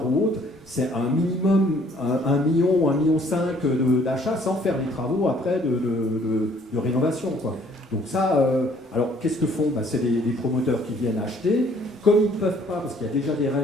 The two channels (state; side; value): normal; both; correlation 0.60